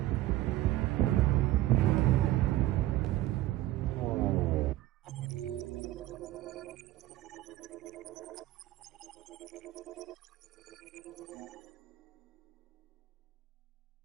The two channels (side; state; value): left; quieter; 15.5 dB